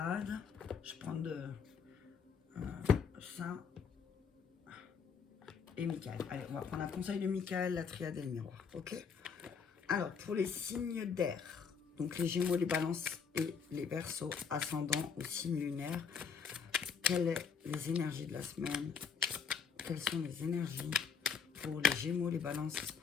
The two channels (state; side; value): quieter; right; 6.3 dB